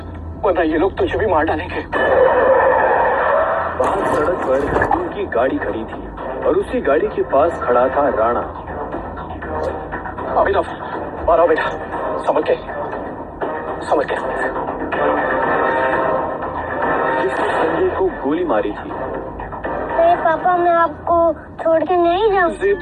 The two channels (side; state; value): both; identical; correlation 1.00